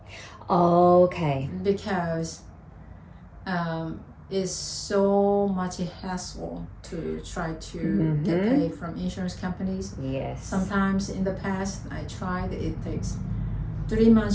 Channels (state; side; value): identical; both; correlation 1.00